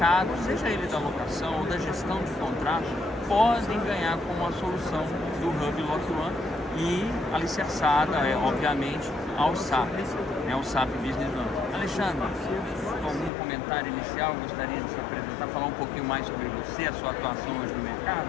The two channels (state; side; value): drops out; right; at 13.3 s